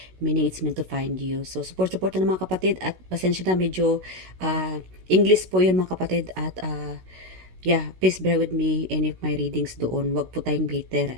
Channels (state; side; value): late; left; 16 ms